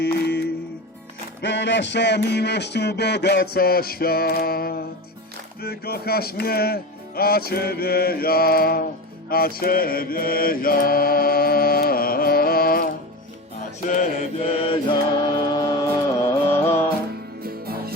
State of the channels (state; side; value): normal; both; correlation 0.26